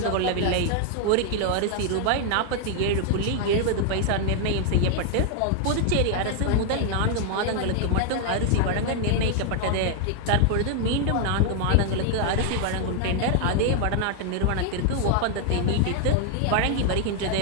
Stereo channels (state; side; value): different; both; correlation 0.00